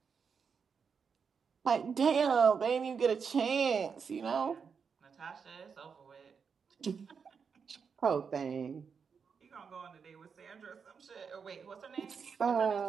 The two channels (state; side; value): quieter; left; 6.1 dB